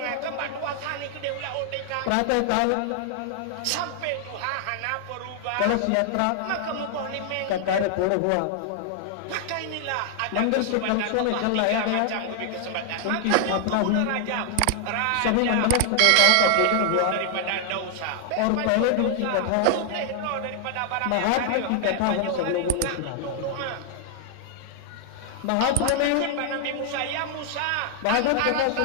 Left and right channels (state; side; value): different; both; correlation 0.00